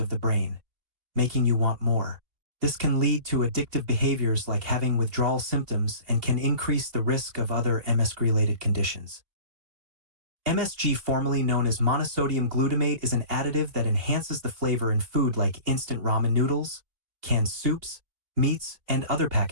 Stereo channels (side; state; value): left; late; 2.6 ms